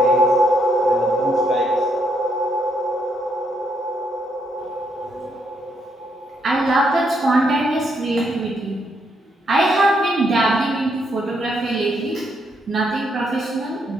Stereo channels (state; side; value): normal; both; correlation 0.75